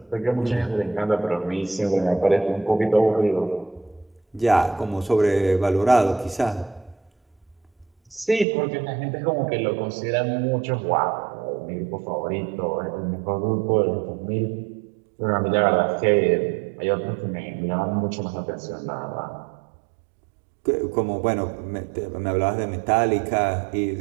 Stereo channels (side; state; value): left; drops out; at 8.5 s